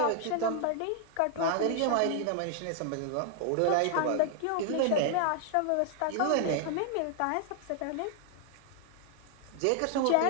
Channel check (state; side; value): different; both; correlation 0.00